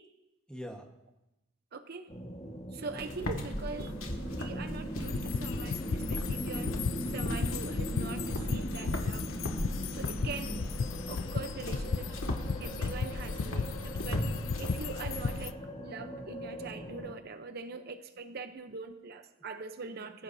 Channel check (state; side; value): normal; both; correlation 0.65